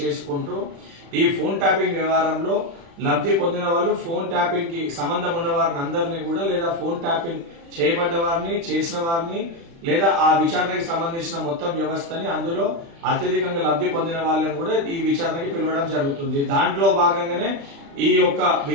ఈ ఫోన్ ట్యాపింగ్ వ్యవహారంలో లబ్ధి పొందిన వాళ్ళు, ఫోన్ ట్యాపింగ్ కి సంబంధం ఉన్న వారిని అందరినీ కూడా, లేదా ఫోన్ ట్యాపింగ్ చేయబడ్డ వారిని, చేసిన వారిని, లేదా ఆ విచారణకి సంబంధించిన మొత్తం వ్యవస్థని, అందులో అత్యధికంగా లబ్ధి పొందిన వాళ్ళని కూడా ఈ విచారణకి పిలవడం జరుగుతుంది. దాంట్లో భాగంగానే ఈ యొక్క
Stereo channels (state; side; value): late; left; 36 ms